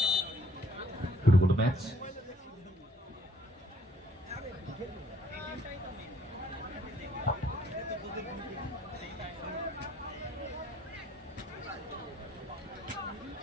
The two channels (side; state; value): both; normal; correlation 0.63